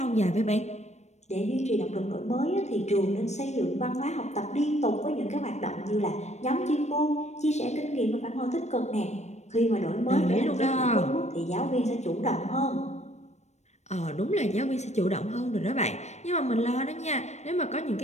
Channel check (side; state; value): right; late; 0.33 ms